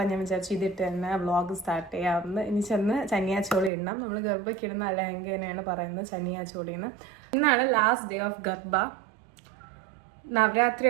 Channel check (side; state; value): left; drops out; at 3.7 s